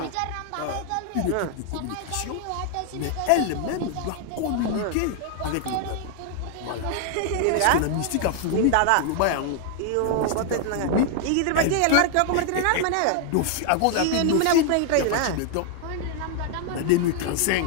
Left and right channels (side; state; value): both; different; correlation 0.00